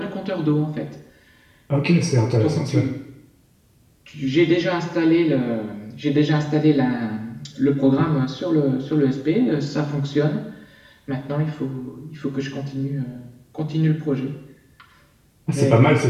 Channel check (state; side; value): identical; both; correlation 1.00